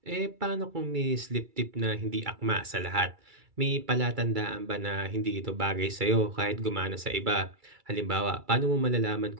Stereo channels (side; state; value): left; late; 2.3 ms